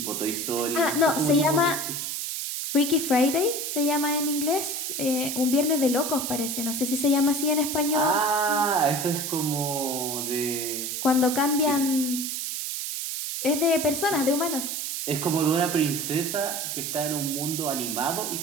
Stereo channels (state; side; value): noise; right; hiss, 3 dB below the sound